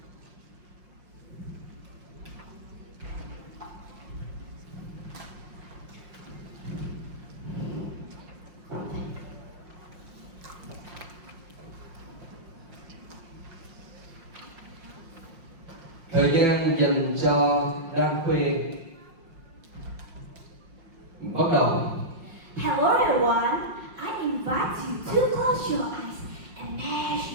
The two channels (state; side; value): late; left; 5.6 ms